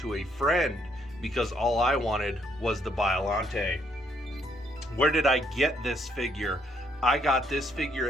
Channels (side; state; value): both; normal; correlation 0.71